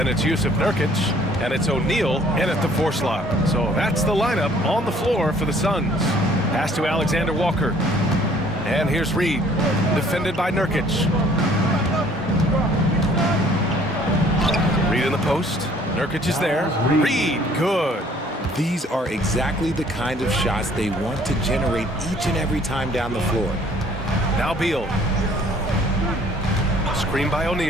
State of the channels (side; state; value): both; normal; correlation 0.58